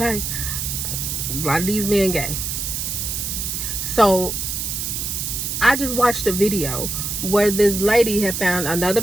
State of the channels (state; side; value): noise; right; hiss, 3 dB below the sound